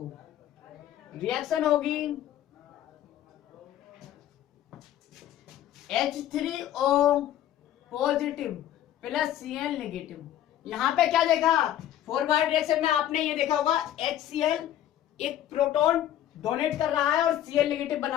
रिएक्शन होगी H3O positive plus Cl negative. यहां पे क्या देखा, फॉरवर्ड रिएक्शन में आपने ये देखा होगा, HCl एक प्रोटॉन डोनेट कर रहा है और Cl नेगेटिव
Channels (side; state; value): right; quieter; 11.9 dB